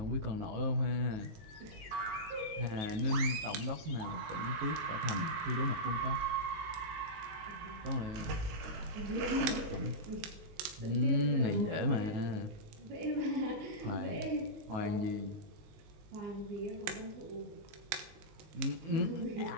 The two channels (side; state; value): left; late; 19 ms